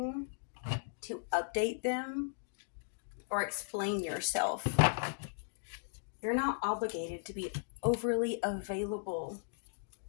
to update them or explain yourself. You're not obligated to be overly available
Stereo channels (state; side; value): silent; right; digital silence